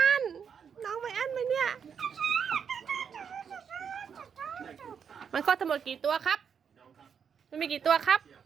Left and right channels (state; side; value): quieter; left; 7.1 dB